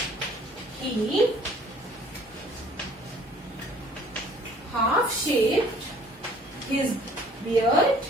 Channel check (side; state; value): both; normal; correlation 0.56